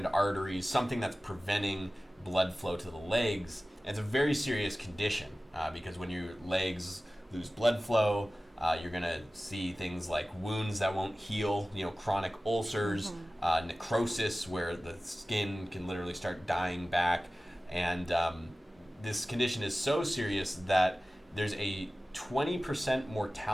arteries, something that's preventing blood flow to the legs. And it's a very serious condition because when your legs lose blood flow, you're going to see things like wounds that won't heal, chronic ulcers, necrosis where the skin can literally start dying back. And this condition is so serious that there's a 20%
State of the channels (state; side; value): normal; both; correlation 0.97